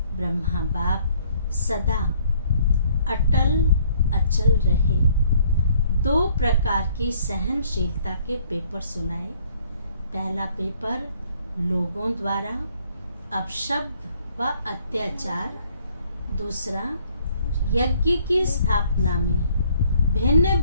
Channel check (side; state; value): both; inverted; correlation -0.62